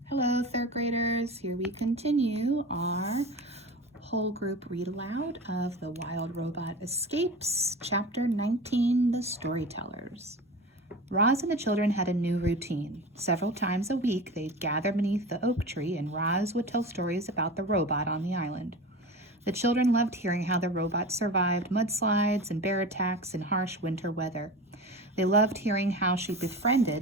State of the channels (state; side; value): normal; both; correlation 0.31